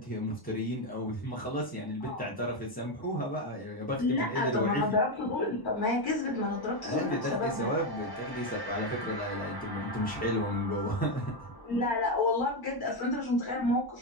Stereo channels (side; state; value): right; late; 1.1 ms